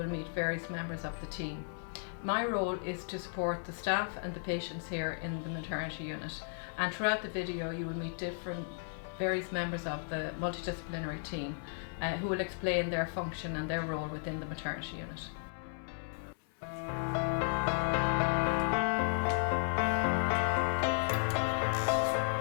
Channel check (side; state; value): right; silent; 55 dB below the other